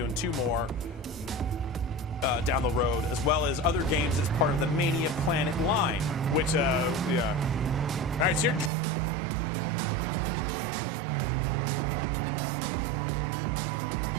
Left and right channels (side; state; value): left; drops out; at 8.7 s